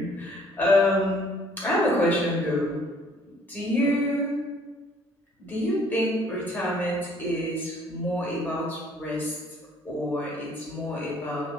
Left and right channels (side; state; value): both; normal; correlation 0.59